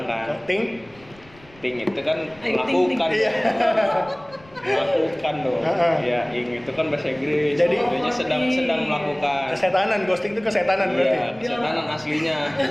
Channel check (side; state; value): left; noise; rumble, 26 dB below the sound